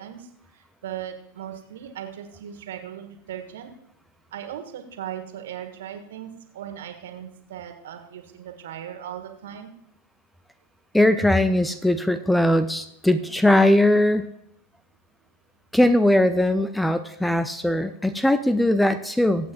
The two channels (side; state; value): both; normal; correlation 0.88